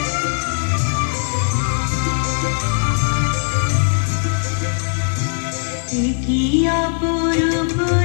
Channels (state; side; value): silent; right; 56 dB below the other